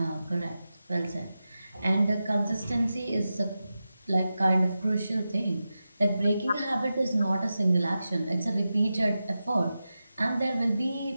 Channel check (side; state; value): both; inverted; correlation -0.92